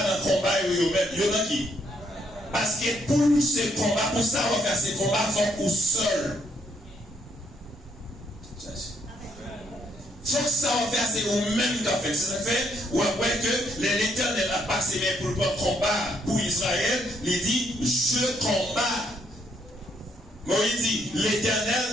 le combat, il y en a qui. Parce que pour ce combat, pour ça, on va faire ce combat, il faut qu'on seul. Faut que ça va faire, c'est vous-même qui a fait. C'est ça fait, ou après que l'Éternel a passé pour le combat pour Israël, il dit, je combats. Moïse dit,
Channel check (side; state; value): both; normal; correlation 0.72